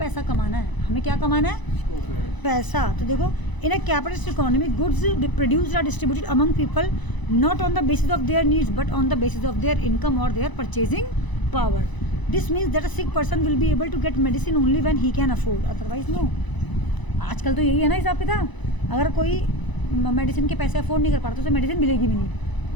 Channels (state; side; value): late; right; 1.0 ms